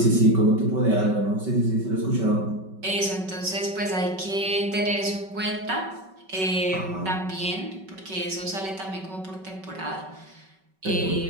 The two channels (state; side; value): late; left; 5.3 ms